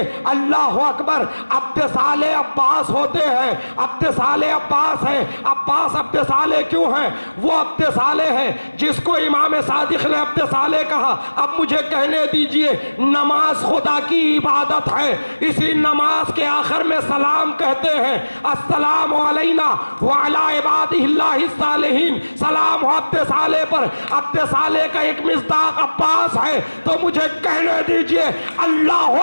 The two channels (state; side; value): inverted; both; correlation -1.00